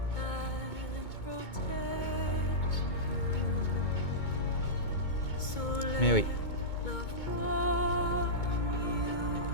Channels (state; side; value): late; right; 2.2 ms